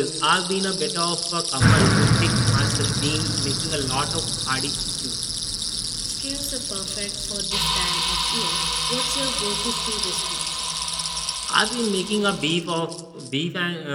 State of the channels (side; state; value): both; identical; correlation 1.00